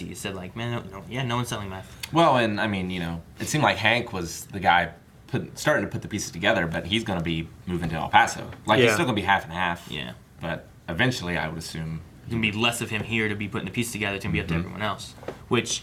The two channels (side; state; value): both; identical; correlation 1.00